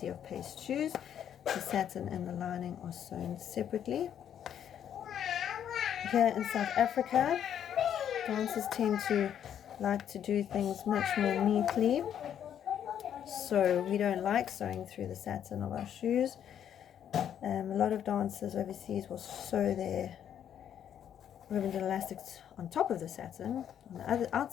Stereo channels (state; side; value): quieter; right; 9.5 dB